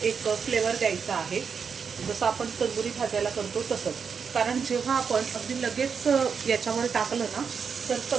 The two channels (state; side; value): quieter; left; 6.2 dB